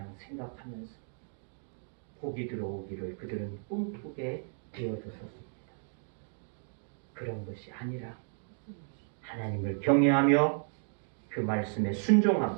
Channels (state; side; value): silent; left; 55 dB below the other